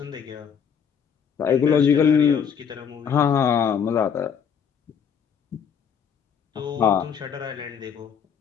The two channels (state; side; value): quieter; right; 7.3 dB